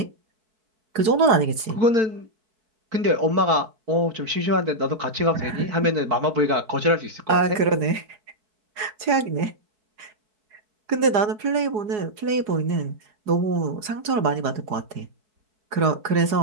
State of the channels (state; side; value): late; left; 4.8 ms